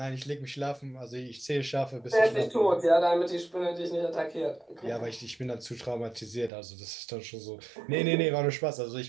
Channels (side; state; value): left; drops out; at 6.5 s